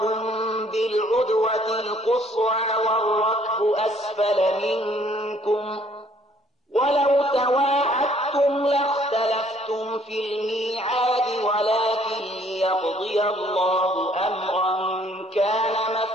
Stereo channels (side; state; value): both; normal; correlation 0.62